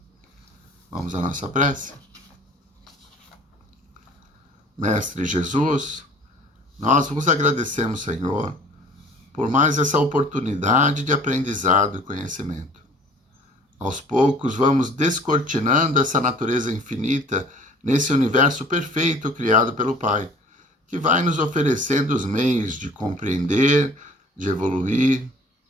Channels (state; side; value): normal; both; correlation 0.50